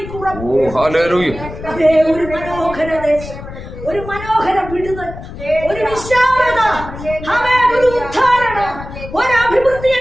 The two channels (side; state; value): left; noise; rumble, 12 dB below the sound